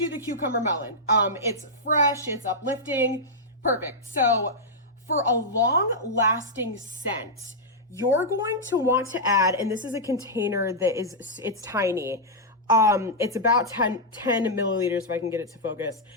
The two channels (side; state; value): both; normal; correlation -0.07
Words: the cucumber melon. It's fresh, it's uplifting, perfect. So for a long-lasting scent, you're going to want to add, and this is a container that it's tiny. It's about 10 milliliters if I can get it to focus.